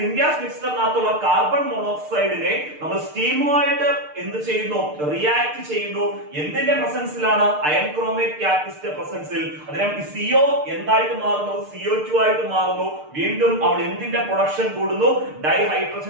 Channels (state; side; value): late; left; 6.6 ms